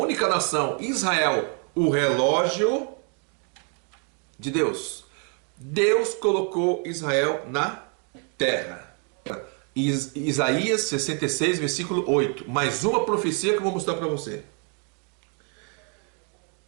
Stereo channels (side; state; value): left; quieter; 39.4 dB